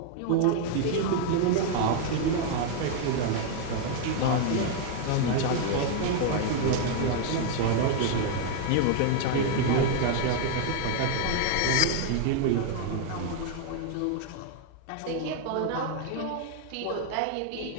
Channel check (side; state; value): both; different; correlation 0.00